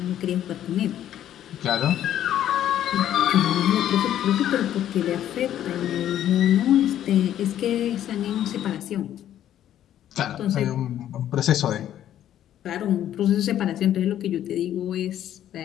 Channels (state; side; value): quieter; right; 11.4 dB